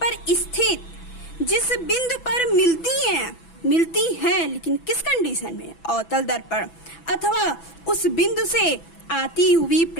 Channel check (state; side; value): late; right; 6.0 ms